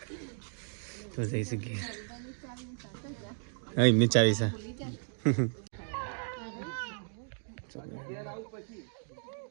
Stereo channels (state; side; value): silent; left; digital silence